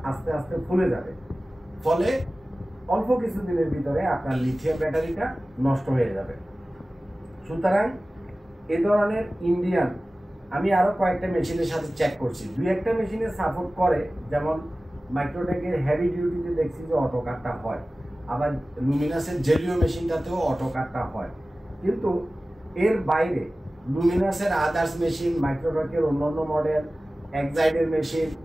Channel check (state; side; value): normal; both; correlation 0.97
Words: আস্তে আস্তে ফুলে যাবে। ফলে অল্প কিছুদিনের ভিতরে আপনার লিথিয়াম ব্যাটারিটা নষ্ট হয়ে যাবে। সুতরাং এ ধরনের ইন্ডিয়ান আমি আরো কয়েকটা মেশিনের সাথে চেক করছি, দুই একটা মেশিনে সাপোর্ট করে, যেমন মাইক্রোটেকের হেভি ডিউটিতে দেখছি যে অটো কাটটা হয়, আবার লুমিনাসের জেলিও মেশিনটাতেও অটো কাটটা হয়। কিন্তু এর বাইরে লুমিনাসের আদার্স মেশিন, মাইক্রোটেকের অন্যান্য মডেল, এক্সাইডের মেশিন,